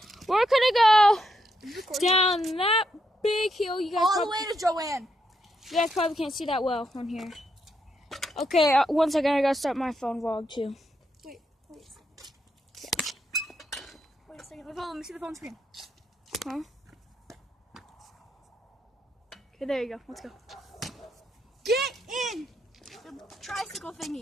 We're gonna go down that big hill. You guys All the probably, way to Joanne. you guys probably can't see that well on here. Okay, one second. I gotta start my phone vlog too. Wait a second. Wait a second. Let me see the phone screen. Huh? Okay, there you go. Let's go. Get in the tricycle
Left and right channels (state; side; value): normal; both; correlation 0.80